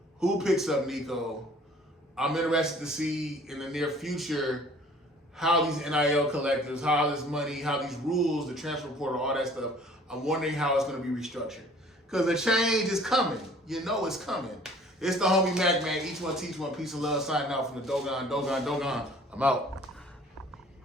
who picks up Nico. I'm interested to see in the near future how these NIL collectives, how this money, how these rules, the transfer portal, all that stuff, I'm wondering how it's going to be restructured. Because the change is coming. You know it's coming. It's the homie MACK, man. Each one teach one. Peace and love. Signing out from the Dogon. I'm out.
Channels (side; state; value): both; normal; correlation 0.52